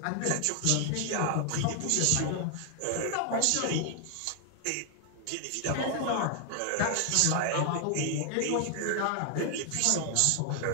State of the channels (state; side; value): different; both; correlation 0.00